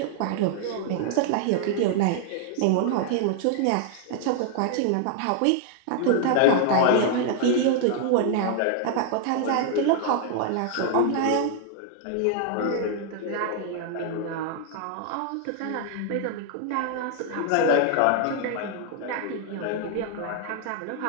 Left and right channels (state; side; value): different; both; correlation 0.00